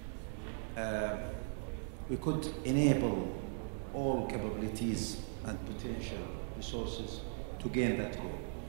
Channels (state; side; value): silent; left; 52 dB below the other